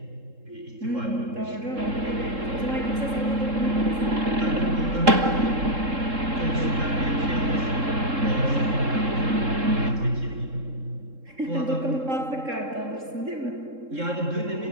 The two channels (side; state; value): left; late; 3.7 ms